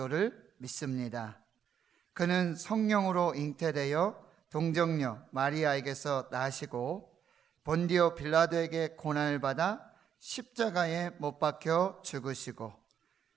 믿습니다. 그는 성령으로 잉태되어 동정녀 마리아에게서 나시고 본디오 빌라도에게 고난을 받아 십자가에 못 박혀 죽으시고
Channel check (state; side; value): quieter; left; 8.5 dB